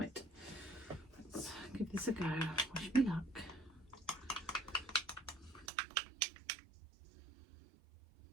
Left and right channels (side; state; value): left; drops out; at 5.7 s